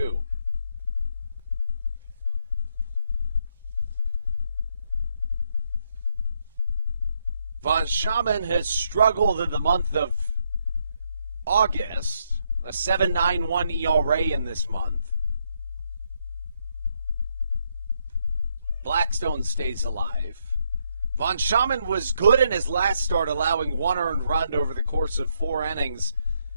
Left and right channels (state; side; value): inverted; both; correlation -0.76